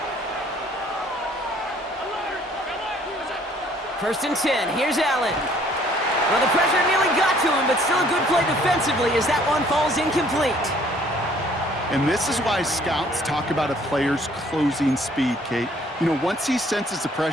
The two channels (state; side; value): normal; both; correlation 0.59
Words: First and 10. Here's Allen. Well, the pressure nearly got to him, but still a good play defensively as that one falls incomplete. And this is why scouts talk about a player's closing speed, Kate. You know, once he senses the